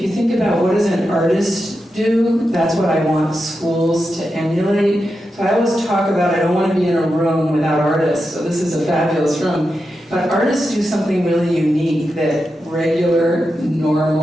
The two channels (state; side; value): normal; both; correlation 0.89